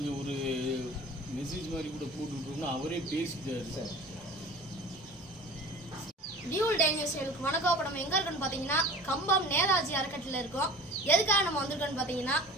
ஒரு மெசேஜ் மாதிரி கூட போட்டுவிட்டோம்னா அவரே பேசிட்டார். சார் டியூல் டேஞ்சர் சேலுக்கு வணக்கம். இப்போ நம்ம எங்கே இருக்கோன்னு பார்த்தீங்கன்னா கம்பம் நேதாஜி அறக்கட்டளையில் இருக்கோம். எதுக்காக நம்ம வந்திருக்கோன்னு பார்த்தீங்கன்னா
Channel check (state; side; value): normal; both; correlation 0.40